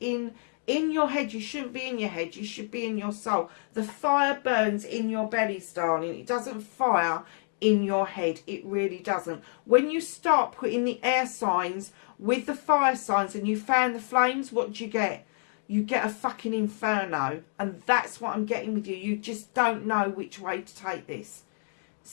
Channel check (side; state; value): right; silent; 59 dB below the other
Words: your head. You shouldn't be in your head. You should be in your soul. The fire burns in your bellies, darling. It doesn't fire in your head. It really doesn't. When you start putting the air signs with the fire signs and you fan the flames, what do you get? You get a fucking inferno. And that's what I'm getting with you. You just don't know which way to take this.